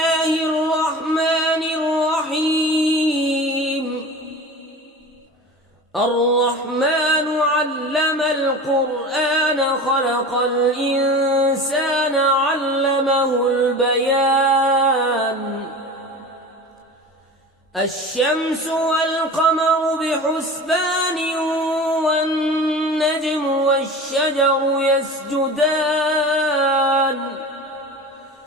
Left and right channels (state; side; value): normal; both; correlation 0.34